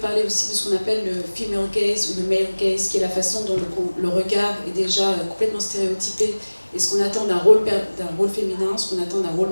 parler aussi de ce qu'on appelle le female gaze ou le male gaze, qui est la façon dont le regard est déjà complètement stéréotypé, et ce qu'on attend d'un rôle féminin, ce qu'on attend d'un rôle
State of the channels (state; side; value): inverted; both; correlation -1.00